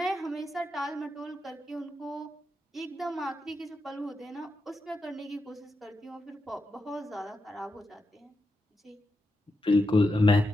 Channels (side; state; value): both; normal; correlation 0.86